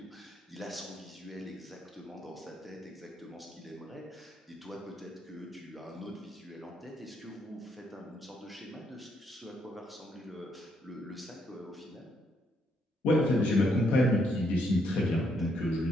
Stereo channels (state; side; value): normal; both; correlation 0.74